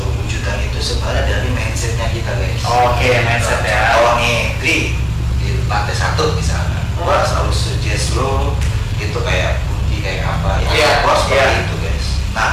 itu sebenarnya dari mindsetnya kita guys. Oke, mindset ya. Kalau nih, Tri, di lantai 1 misalnya, gua selalu suggest lo itu kayak kunci kayak apa, Iya, gua seperti iya. itu guys. Nah,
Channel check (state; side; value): identical; both; correlation 1.00